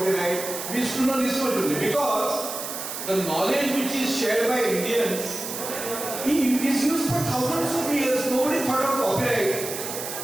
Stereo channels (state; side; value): noise; right; hiss, 7 dB below the sound